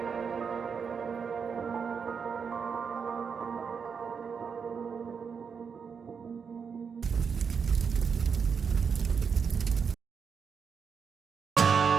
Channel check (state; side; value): quieter; left; 6.2 dB